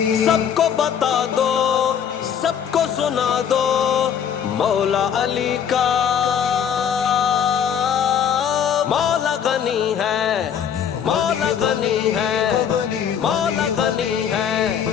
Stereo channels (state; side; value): quieter; right; 8.3 dB